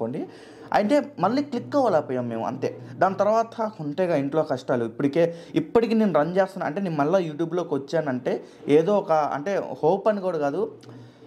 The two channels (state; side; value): identical; both; correlation 1.00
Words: అంటే మళ్ళీ క్లిక్ అవ్వలేకపోయాం మేము, అంతే. దాని తర్వాత ఉంటేగా ఇంట్లో కష్టాలు. ఇప్పటికీ నేను రన్ చేస్తాను అంటే, నేను మళ్ళీ యూట్యూబ్లోకి వచ్చానంటే ఏదో ఒక అంటే హోప్ అని కూడా కాదు,